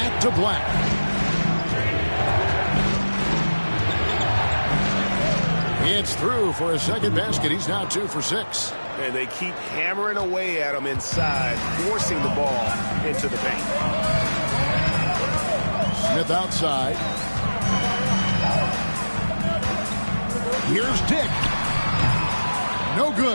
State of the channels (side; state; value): both; inverted; correlation -1.00